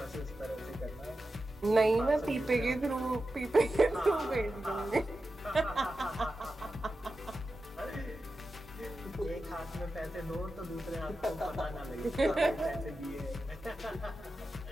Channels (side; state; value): both; normal; correlation 0.91